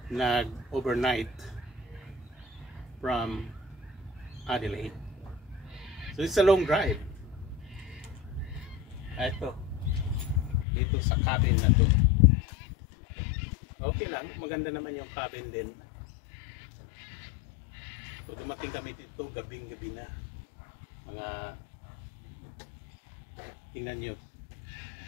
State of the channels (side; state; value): right; drops out; at 10.7 s